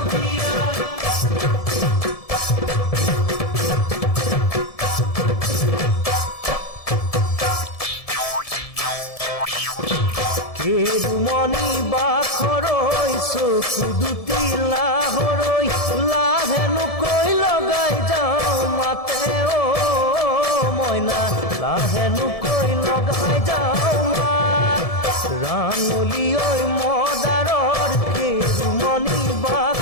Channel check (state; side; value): late; right; 1.7 ms